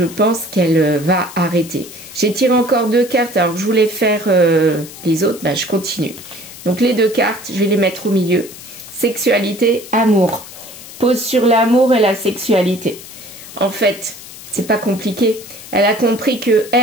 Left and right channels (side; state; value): left; noise; hiss, 16 dB below the sound